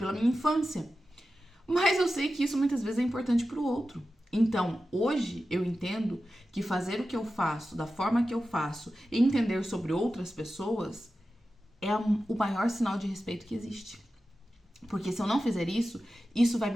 minha infância. Mas eu sei que isso muitas vezes é importante pro outro. Então, hoje eu entendo que fazer o que eu faço, da forma que eu faço, e entender sobre outras pessoas é o maior sinal de respeito que existe. Porque se eu não fizer isso, isso vai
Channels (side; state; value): both; normal; correlation 0.93